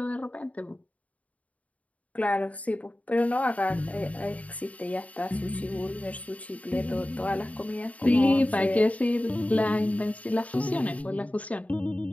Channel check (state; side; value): late; right; 0.069 ms